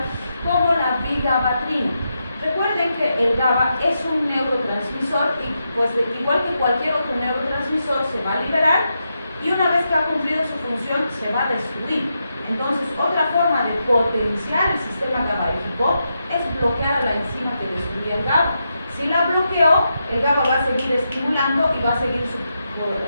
como la vigabatrina. Recuerden que el GABA es un neurotransmisor y pues igual que cualquier otro neurotransmisor se va a liberar y una vez que ha cumplido su función se va a destruir. Entonces otra forma de potenciar el sistema GABAérgico es bloquear a la enzima que destruye el GABA. Si la bloqueó, el GABA va a seguir estimulando y va a seguir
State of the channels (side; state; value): both; inverted; correlation -0.85